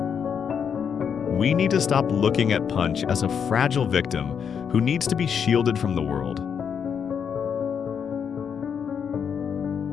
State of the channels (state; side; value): quieter; right; 7.3 dB